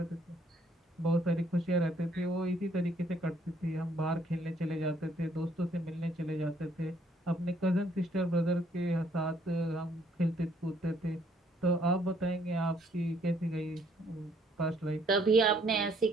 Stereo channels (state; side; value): normal; both; correlation 0.66